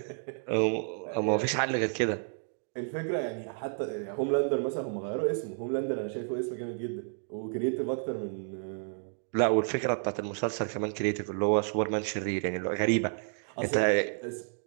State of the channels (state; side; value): silent; left; 57 dB below the other